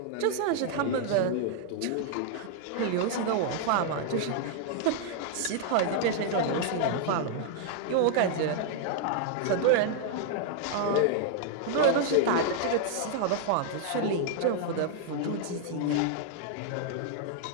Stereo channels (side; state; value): both; different; correlation -0.01